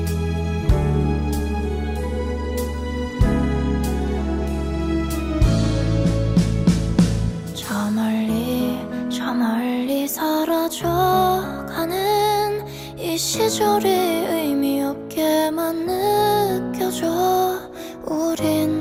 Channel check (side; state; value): both; identical; correlation 1.00